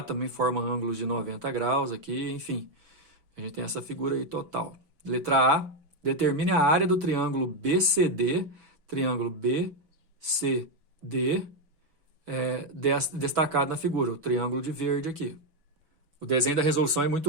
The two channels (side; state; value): left; late; 6.1 ms